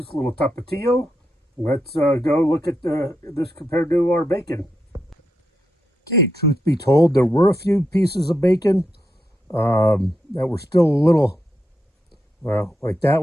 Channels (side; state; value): both; normal; correlation 0.84